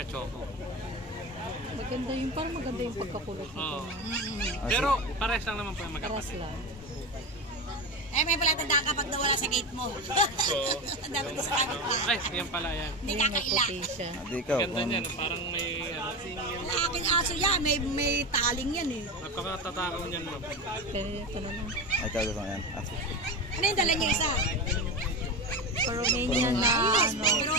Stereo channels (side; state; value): both; normal; correlation 0.22